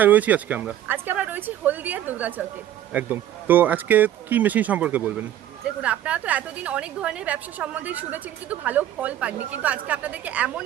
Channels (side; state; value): left; quieter; 11.8 dB